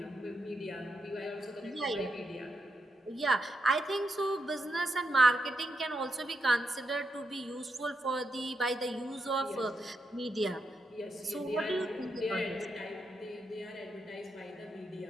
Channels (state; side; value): normal; both; correlation 0.84